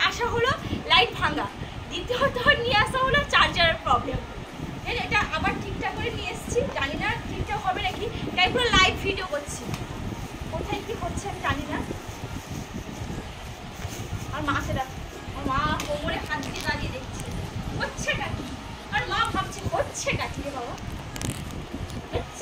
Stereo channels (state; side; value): identical; both; correlation 1.00